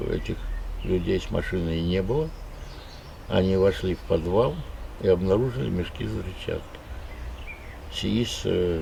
этих людей с машиной не было. Они вошли в подвал и обнаружили мешки с взрывчаткой. СИИС,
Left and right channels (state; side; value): identical; both; correlation 1.00